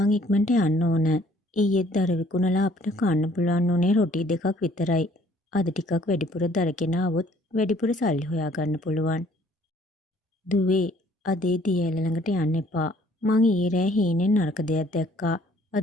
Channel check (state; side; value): normal; both; correlation 0.59